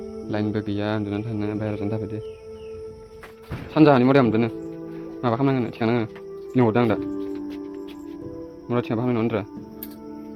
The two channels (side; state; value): both; identical; correlation 1.00